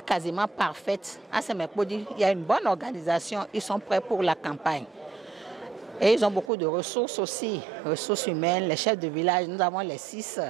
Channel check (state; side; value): drops out; left; at 6.5 s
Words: parfaite. À Semekodji, il y a une bonne organisation, ils sont prêts pour la campagne. Et ils ont beaucoup de ressources aussi, ressources humaines, les chefs de village. Nous avons les six